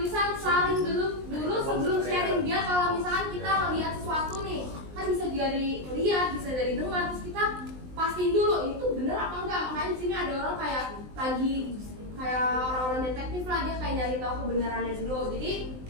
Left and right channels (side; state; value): left; late; 19 ms